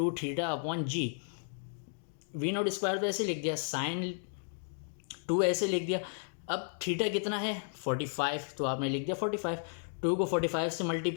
theta upon G. V naught square तो ऐसे लिख दिया, साइन 2 ऐसे लिख दिया। अब थीटा कितना है 45, तो आपने लिख दिया 45। 2 को 45 से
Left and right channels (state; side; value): silent; right; digital silence